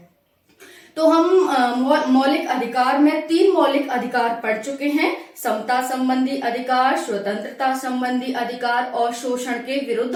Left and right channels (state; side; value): identical; both; correlation 1.00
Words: तो हम मौलिक अधिकार में 3 मौलिक अधिकार पढ़ चुके हैं: समता संबंधी अधिकार, स्वतंत्रता संबंधी अधिकार और शोषण के विरुद्ध